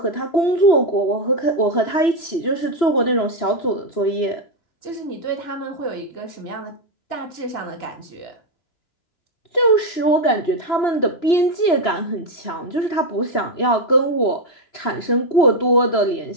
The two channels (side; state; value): right; late; 2.9 ms